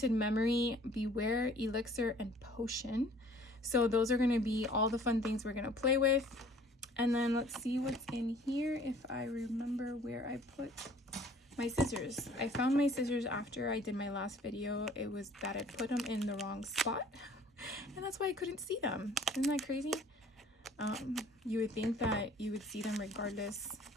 Memory, Beware, Elixir, and Potion. So those are going to be all the fun things we're going to play with. And then let's see what's in here, if I remember where I put my scissors. I found my scissors after I did my last video. It was that I put them in the wrong spot, and that's why I couldn't see them. Isn't that crazy? You would think that you would see them regardless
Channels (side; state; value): both; normal; correlation 0.53